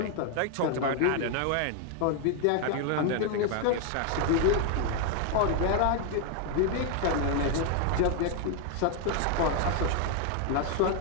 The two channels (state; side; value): different; both; correlation 0.00